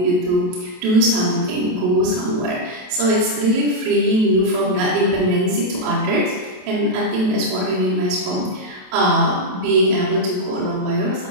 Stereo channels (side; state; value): left; late; 27 ms